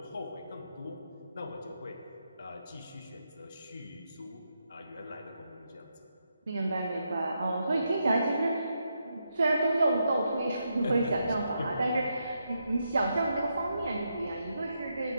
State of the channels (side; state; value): both; inverted; correlation -0.82